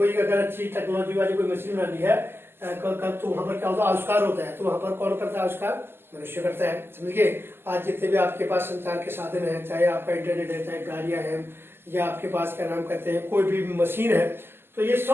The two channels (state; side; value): late; left; 0.11 ms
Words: अगर अच्छी टेक्नोलॉजी वाली कोई मशीन बनानी है, तो वहां पर क्या होता है, आविष्कार होता है। तो वहां पर कौन करता है आविष्कार, मनुष्य करता है, समझिए। आज जितने भी आपके पास संचार के साधन है, चाहे आपका इंटरनेट है, चाहे गाड़ियां हैं, या आपके पास क्या नाम कहते हैं कोई भी मशीन है, तो ये